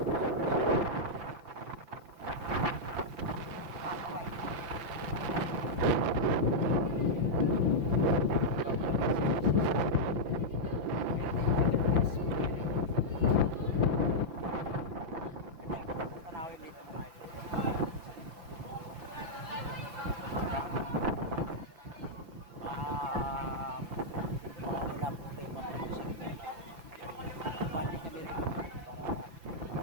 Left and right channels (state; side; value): late; left; 5.9 ms